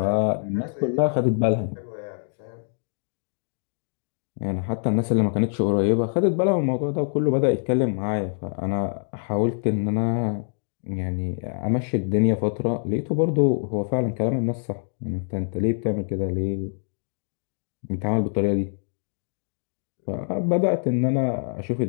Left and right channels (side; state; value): right; silent; digital silence